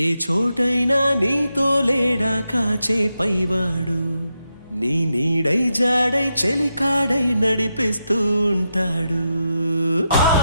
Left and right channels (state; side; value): inverted; both; correlation -0.86